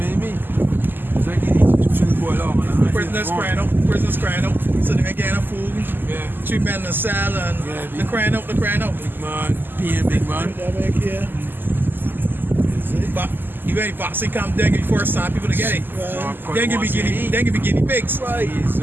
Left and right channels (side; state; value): left; late; 0.093 ms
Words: what I mean? It's like these institutions boil out, man. Prisoners crying out. So they getting food. Yeah. 3 men in the cell and Yeah, they're crying out. Big man, peeing big man. That back here. But you ain't boxing come dengue first time people to get it. Dengue be guinea pigs. Right. He's